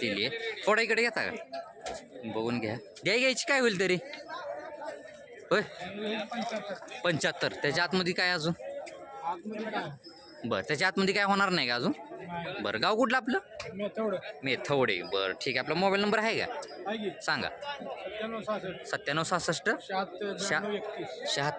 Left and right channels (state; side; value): identical; both; correlation 1.00